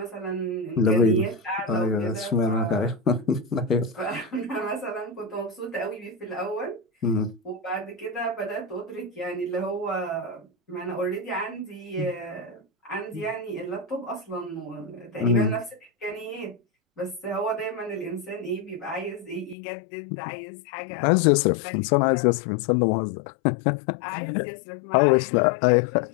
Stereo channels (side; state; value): right; drops out; at 19.6 s